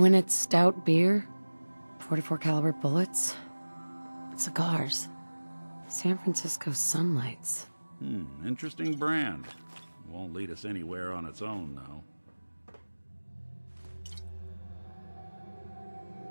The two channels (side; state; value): both; inverted; correlation -1.00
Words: stout beer, 44 caliber bullets, cigars, San Francisco Sunlights. Interesting brand. Won't lead us anywhere on its own, though.